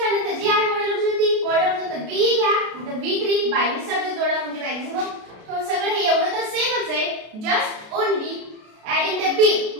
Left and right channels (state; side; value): late; left; 33 ms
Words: झालं, जी आहे मॉडेल ऑब्जेक्ट ती मॉडेल ऑब्जेक्ट बी घ्या, नंतर V3 बाय ने सब्जेक्ट जोडा म्हणजे मॅक्सिमम तो सगळं हे एवढं तर सेमच आहे, just only adding the b,